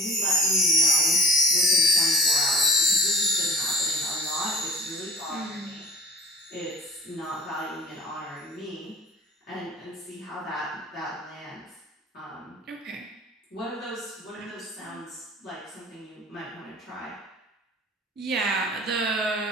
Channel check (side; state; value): both; normal; correlation 0.44